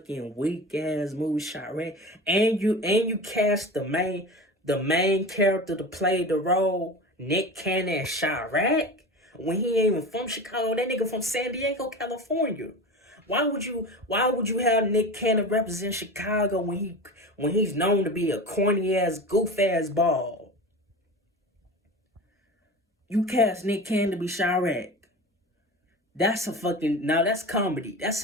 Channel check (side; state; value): both; normal; correlation 0.31